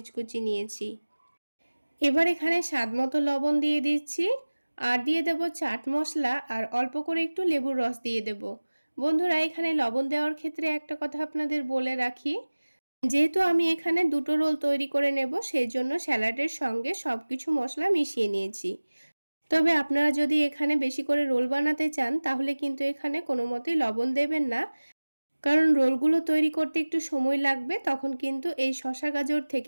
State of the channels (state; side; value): inverted; both; correlation -1.00